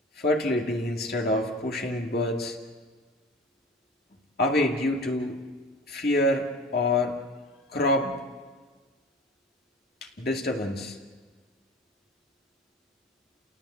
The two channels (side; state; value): both; normal; correlation 0.39